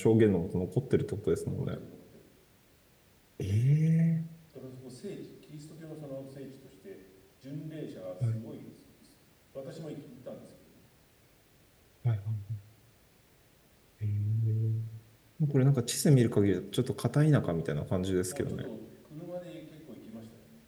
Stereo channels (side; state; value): both; identical; correlation 1.00